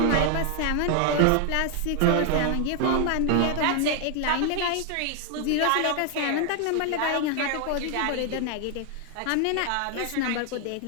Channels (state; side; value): different; both; correlation 0.00